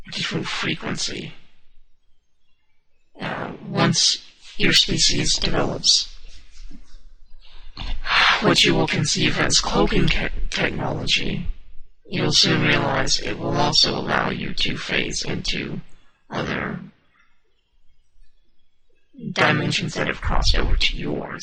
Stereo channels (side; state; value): both; identical; correlation 1.00